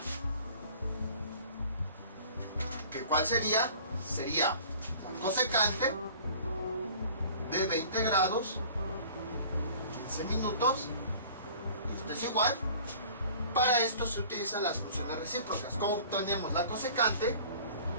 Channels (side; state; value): both; inverted; correlation -0.47